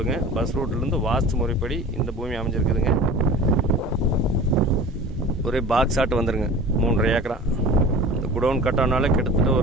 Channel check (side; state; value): both; normal; correlation 0.39